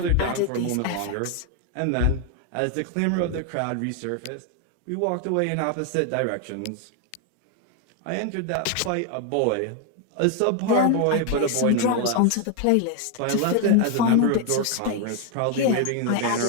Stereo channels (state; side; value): different; both; correlation 0.01